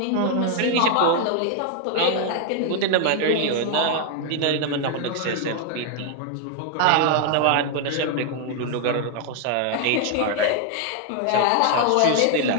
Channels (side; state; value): both; different; correlation 0.00